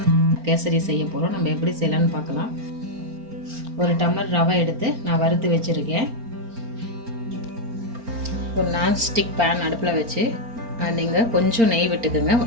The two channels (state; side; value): late; left; 4.4 ms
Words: கேசரி செய்ய போகிறோம். நம்ம எப்படி செய்யலாம்னு பார்க்கலாம். ஒரு டம்ளர் ரவை எடுத்து நான் வறுத்து வச்சுருக்கேன். ஒரு நான்ஸ்டிக் பேன் அடுப்பில் வச்சு நீங்கள் கொஞ்சம் நெய் விட்டுக்குங்க